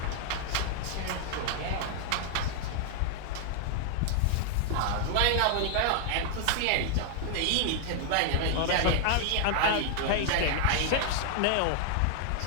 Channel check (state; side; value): different; both; correlation 0.00